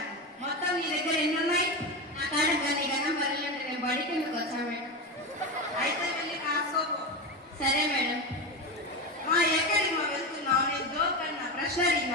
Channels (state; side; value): normal; both; correlation 0.18